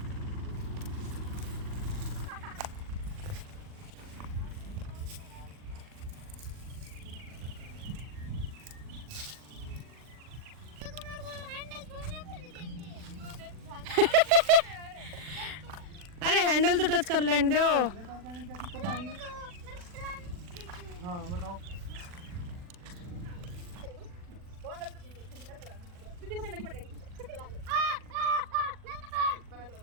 अरे हैंडल तो टच कर लेने दो। हाँ बताओ।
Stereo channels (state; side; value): late; left; 40 ms